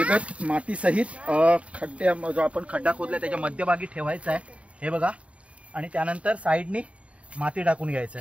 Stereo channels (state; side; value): late; left; 0.063 ms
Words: माती सहित खड्ड्या, जो आपण खड्डा खोदलाय त्याच्या मध्यभागी ठेवायचा आहे। हे बघा, आणि त्यानंतर साईडनी माती टाकून घ्यायचं